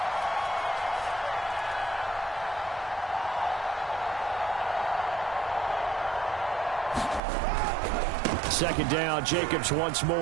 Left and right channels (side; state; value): left; drops out; at 7.2 s